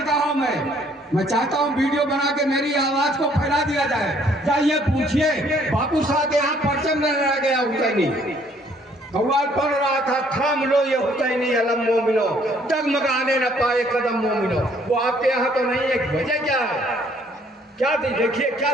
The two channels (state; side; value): normal; both; correlation 0.63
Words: में, मैं चाहता हूँ वीडियो बना के मेरी आवाज को फैला दिया जाए। जाइए पूछिए बापू साहब यहाँ परचम न रह गया हुसैनी, कव्वाल पढ़ रहा था, थाम लो ये हुसैनी अलम मोमिनो, डगमगाने न पाए कदम मोमिनो। वो आपके यहाँ तो नहीं है, वजह क्या है? क्या देखिए क्या